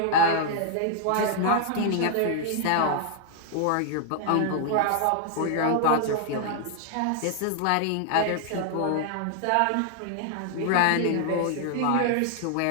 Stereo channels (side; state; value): both; different; correlation 0.00